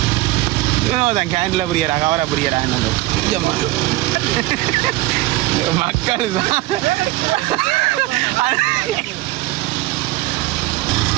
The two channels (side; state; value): left; quieter; 18.6 dB